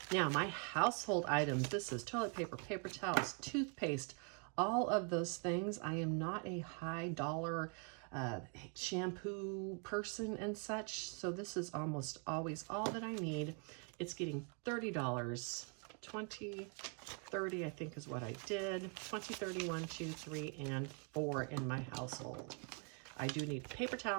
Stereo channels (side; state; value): left; quieter; 38.2 dB